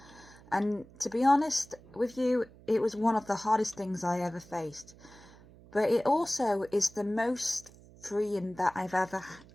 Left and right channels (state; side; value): noise; right; hum, 22 dB below the sound